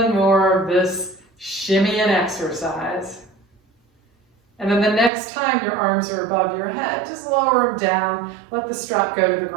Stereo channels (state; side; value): drops out; left; at 5.1 s